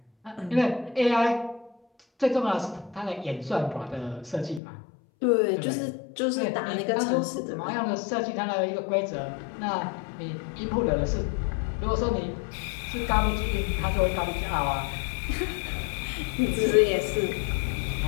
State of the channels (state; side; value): drops out; right; at 4.6 s